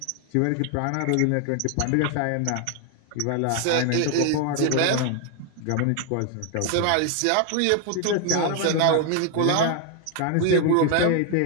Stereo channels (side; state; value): both; different; correlation 0.00